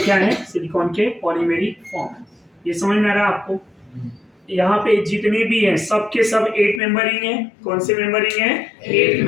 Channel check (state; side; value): drops out; right; at 6.8 s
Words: क्या है? सिलिकॉन के पॉलीमेरिक फॉर्म. ये समझ में आ रहा है आपको? यहाँ पे जितने भी हैं सब के सब 8 मेंबरिंग है. कौन से मेंबरिंग है? 8